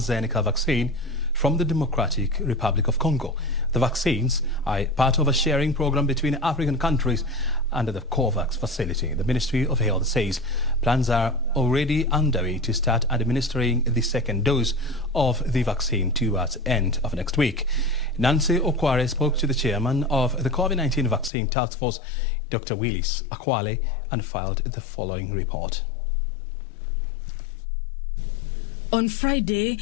vaccine from the Democratic Republic of Congo. The vaccines are part of a sharing program between African countries under the COVAX facility. The Ministry of Health says plans are already underway to start administering the second dose of the vaccine towards the end of next week. Nancy Okware spoke to the chairman of the COVID-19 vaccine task force, Dr. Willis Akhwale, and filed the following report. On Friday,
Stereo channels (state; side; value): drops out; right; at 21.3 s